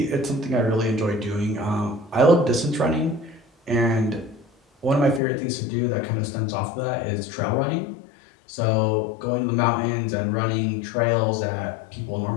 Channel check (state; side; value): drops out; right; at 5.2 s